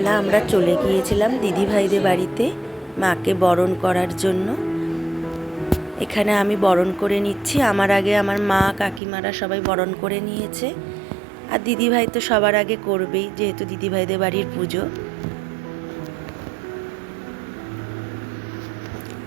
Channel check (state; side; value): drops out; left; at 9.0 s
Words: আমরা চলে গিয়েছিলাম দিদিভাইদের বাড়িতে মাকে বরণ করার জন্য। এখানে আমি বরণ করে নিচ্ছি, আমার আগে আমার মা কাকিমারা সবাই বরণ করে নিয়েছে। আর দিদিভাই তো সবার আগে করবেই, যেহেতু দিদিভাইদের বাড়ির পুজো।